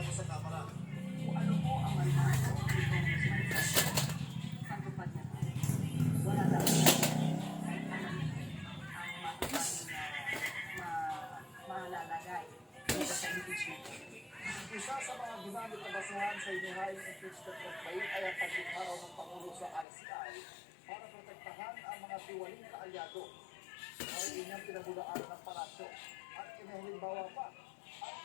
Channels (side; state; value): right; drops out; at 19.9 s